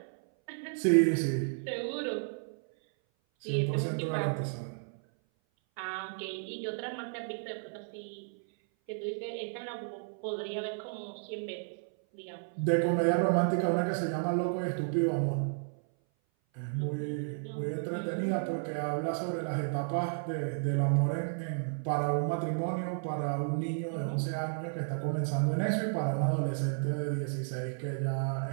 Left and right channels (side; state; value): left; silent; 56 dB below the other